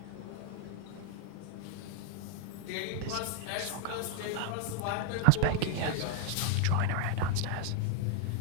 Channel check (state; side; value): different; both; correlation 0.01